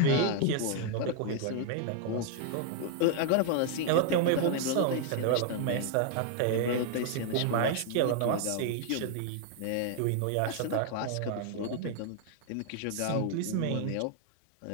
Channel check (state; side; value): different; both; correlation 0.00